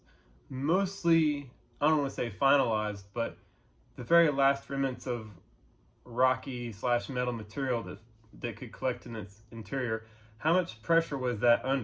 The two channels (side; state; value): both; identical; correlation 1.00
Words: mostly, I don't want to say finalized, but the very last remnants of rocky / metal material that could collect in its interior. How much pressure was that